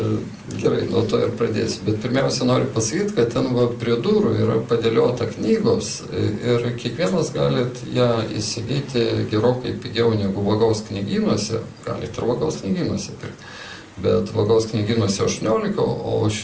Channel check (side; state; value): both; identical; correlation 1.00